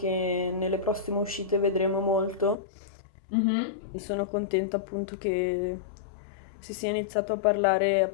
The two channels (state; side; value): drops out; right; at 2.6 s